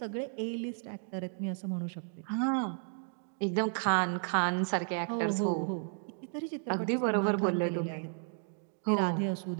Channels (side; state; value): left; silent; 56 dB below the other